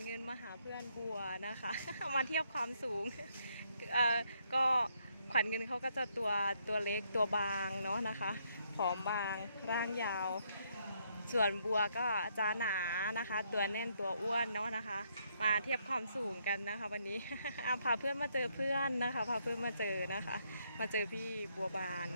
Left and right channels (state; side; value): inverted; both; correlation -0.73